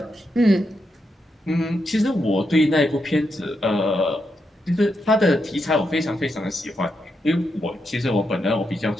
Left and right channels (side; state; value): both; normal; correlation 0.83